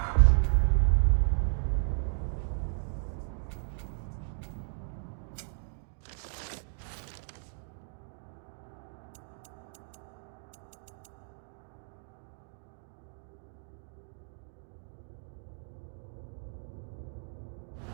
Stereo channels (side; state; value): left; silent; digital silence